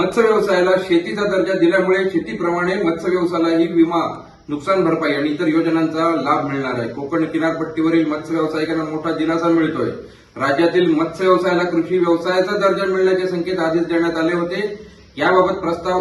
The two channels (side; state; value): both; identical; correlation 1.00